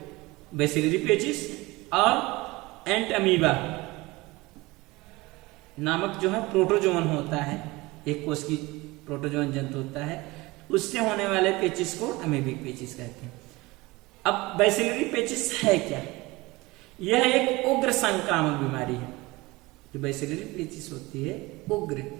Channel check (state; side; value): quieter; left; 21.8 dB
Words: बैसिलरी पेचिस और एंट अमीबा नामक जो है प्रोटोजोवन होता है, एक कोष की प्रोटोजोवन जंतु होता है, उससे होने वाले पेचिस को अमीबिक पेचिस कहते हैं। अब बैसिलरी पेचिस है क्या, यह एक उग्र संक्रामक बीमारी है। जो बैसिलरी पेचिस होती है उग्र